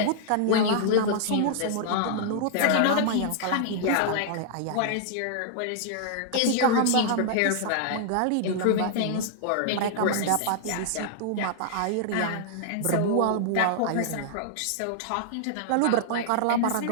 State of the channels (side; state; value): both; different; correlation -0.01